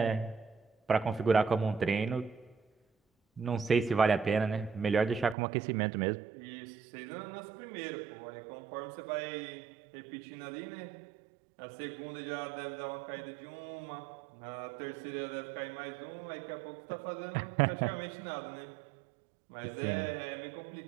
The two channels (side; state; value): left; drops out; at 5.4 s